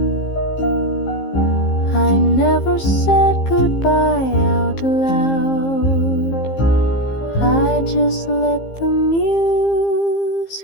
I never said goodbye out loud. I just let the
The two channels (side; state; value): right; late; 15 ms